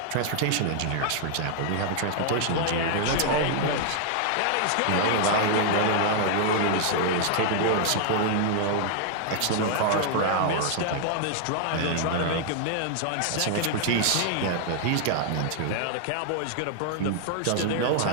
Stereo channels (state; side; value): different; both; correlation 0.00